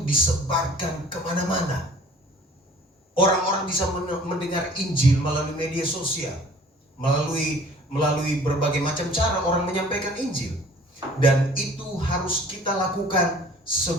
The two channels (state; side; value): normal; both; correlation 0.50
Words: kemana-mana. Orang-orang bisa mendengar Injil melalui media sosial, melalui berbagai macam cara orang menyampaikan Injil. Dan itu harus kita lakukan